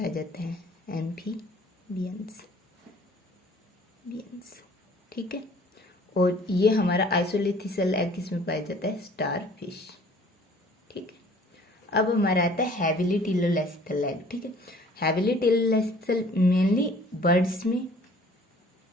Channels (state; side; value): normal; both; correlation 0.53